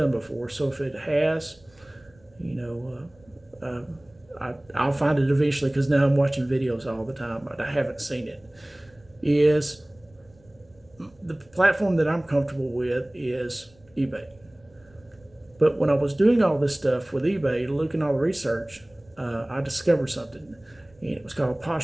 before, so if it has, I'll find it eventually, because now I'm watching videos all the time, but I haven't seen it, is the platform that I'm comfortable with is eBay. But when I was doing all this stuff with eBay, looking at all the research, I discovered something, and it was called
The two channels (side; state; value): right; noise; rumble, 30 dB below the sound